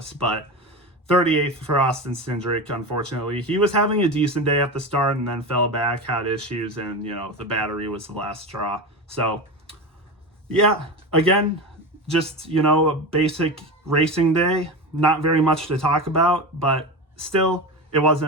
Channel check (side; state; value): both; normal; correlation 0.23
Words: But 38th for Austin Cindric, unfortunately. He was having a decent day at the start and then fell back, had issues, and, the battery was the last straw. So, yeah, again, just, a basic racing day. Not very much to talk about, but still, it